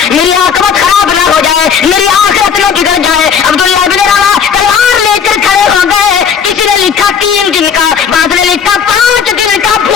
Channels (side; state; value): right; quieter; 7.1 dB